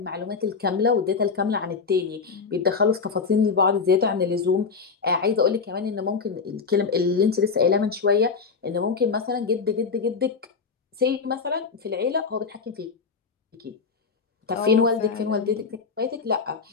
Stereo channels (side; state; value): right; quieter; 5.1 dB